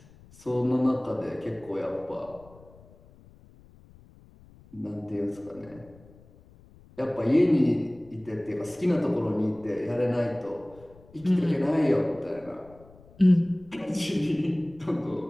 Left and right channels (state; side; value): noise; left; rumble, 25 dB below the sound